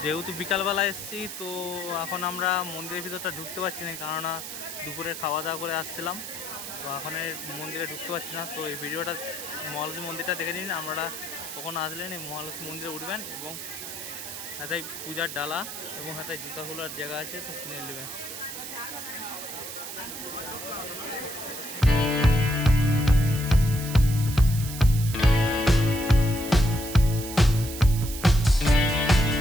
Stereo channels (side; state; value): right; noise; hiss, 9 dB below the sound